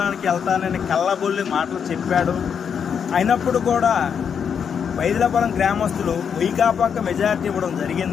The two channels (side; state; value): right; quieter; 7.2 dB